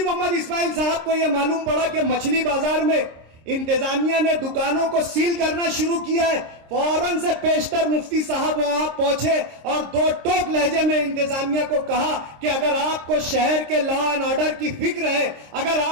محمد اسماعیل صاحب کو یہ معلوم پڑا کہ مچھلی بازار میں انتظامیہ نے دکانوں کو سیل کرنا شروع کیا ہے، فوراً سے پیشتر مفتی صاحب وہاں پہنچے اور دو ٹوک لہجے میں انتظامیہ کو کہا کہ اگر آپ کو شہر کے لا اینڈ آرڈر کی فکر ہے، اگر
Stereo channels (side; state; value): left; late; 26 ms